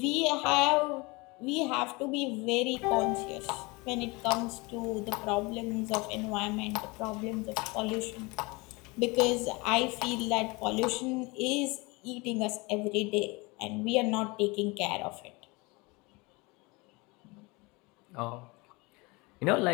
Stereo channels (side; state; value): right; quieter; 25.8 dB